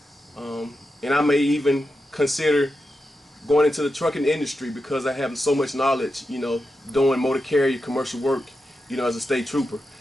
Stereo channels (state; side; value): normal; both; correlation 0.89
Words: And I may even consider going into the trucking industry because I have so much knowledge, doing motor carrier commercial work, as a state trooper.